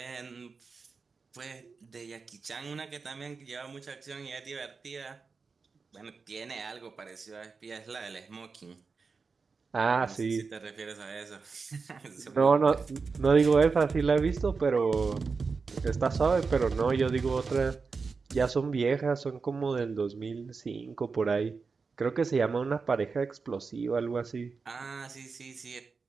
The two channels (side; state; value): left; quieter; 4.8 dB